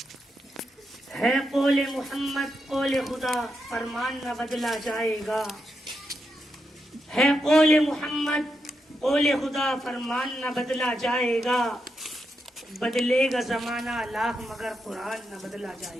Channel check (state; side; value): normal; both; correlation 0.84